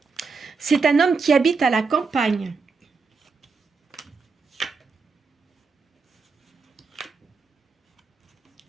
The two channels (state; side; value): quieter; left; 4.7 dB